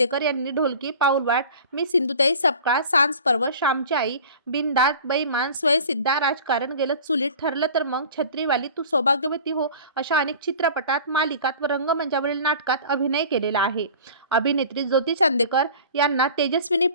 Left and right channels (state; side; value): inverted; both; correlation -0.42